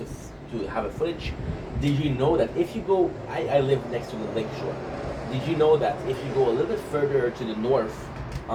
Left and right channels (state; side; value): identical; both; correlation 1.00